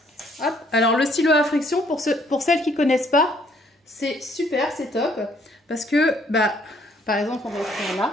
Hop. Alors, le stylo à friction, pour celles qui ne connaissent pas, c'est super, c'est top. Parce que, par exemple, on va faire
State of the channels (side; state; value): both; normal; correlation 0.65